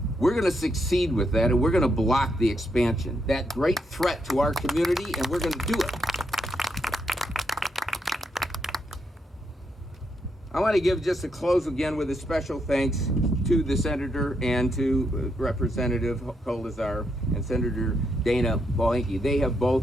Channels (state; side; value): normal; both; correlation 0.79